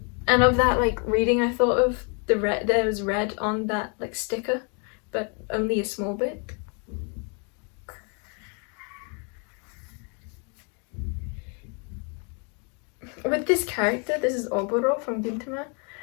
And of that like reading, I thought of the red, there was red on that like sticker, but only a small bit. With this character, this is Oboro from Gintama,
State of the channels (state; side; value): quieter; right; 37.0 dB